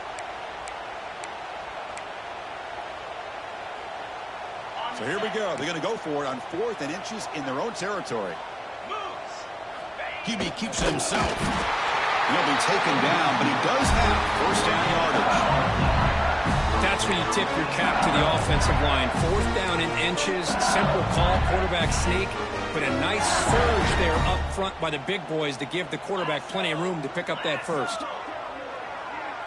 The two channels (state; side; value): identical; both; correlation 1.00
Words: So here we go. They're going to go for it on 4th and inches in their own territory. QB keeps it himself. He'll be taken down, but he does have first down yardage. That's that's where you tip your cap to the offensive line. 4th down in inches, simple call, quarterback sneak, but a nice surge there up front by the big boys to give the quarterback plenty of room to pick up that first.